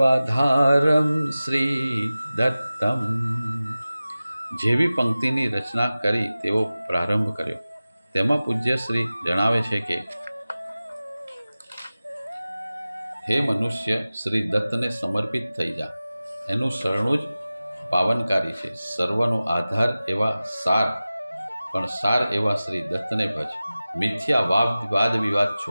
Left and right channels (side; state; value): both; inverted; correlation -0.97